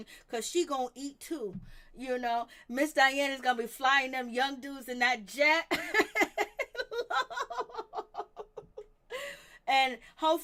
because she gonna eat too. Miss Diana's gonna be flying them young dudes in that jet. And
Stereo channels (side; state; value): both; identical; correlation 1.00